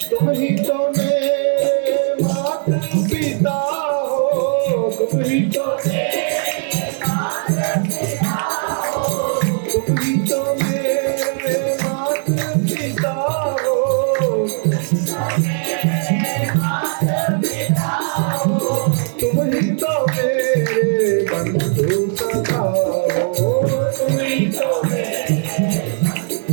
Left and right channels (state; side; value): silent; left; digital silence